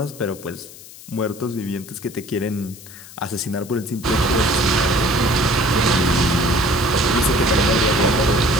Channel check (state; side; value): noise; left; hiss, 18 dB below the sound